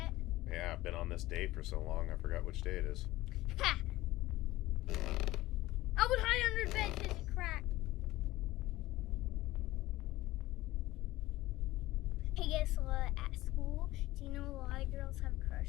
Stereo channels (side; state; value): right; quieter; 17.3 dB